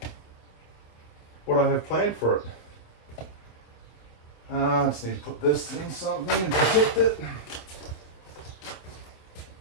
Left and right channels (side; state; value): right; late; 27 ms